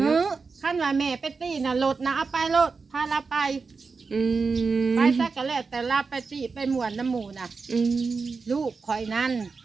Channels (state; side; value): quieter; left; 4.6 dB